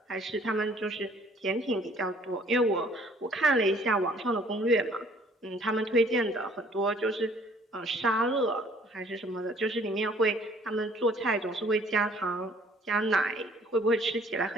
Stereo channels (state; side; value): normal; both; correlation 0.58